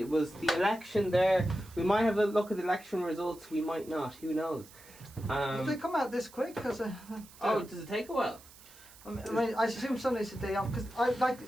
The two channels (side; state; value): right; noise; hiss, 21 dB below the sound